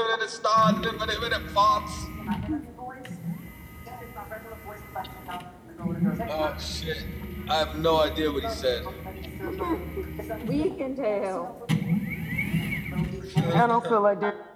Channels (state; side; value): identical; both; correlation 1.00